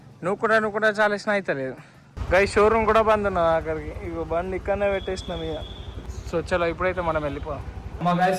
నువ్వు కూడా చాలా ఇష్టం అవుతలేదు గైస్. షోరూమ్ కూడా బంద్ ఉన్నది అక్కడికి. ఇగో బండి ఇక్కడనే పెట్టేసినాం ఇక. సో చలో ఇప్పుడైతే మనం వెళ్ళిపోదాం. అమ్మ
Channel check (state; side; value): identical; both; correlation 1.00